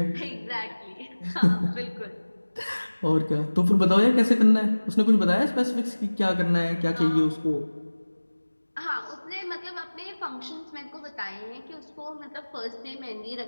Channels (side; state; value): both; inverted; correlation -1.00